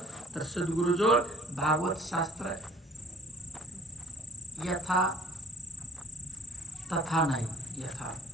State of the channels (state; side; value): normal; both; correlation 0.52